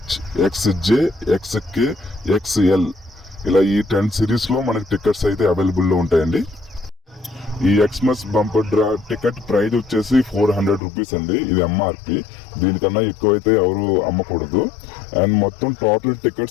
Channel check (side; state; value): right; drops out; at 10.8 s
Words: XJ, XK, XL ఇలా ఈ 10 సిరీస్లో మనకి టికెట్స్ అయితే అవైలబుల్లో ఉంటాయండి. ఈ Xmas bumper draw ticket price వచ్చేసి 400 రూపీస్ అండి. ఇది MRP. దీనికన్నా ఎక్కువైతే ఎవరు అమ్మకూడదు. అండ్ మొత్తం టోటల్